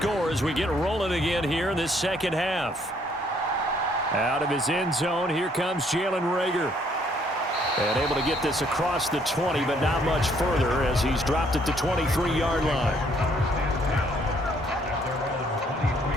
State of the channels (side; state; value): both; normal; correlation 0.66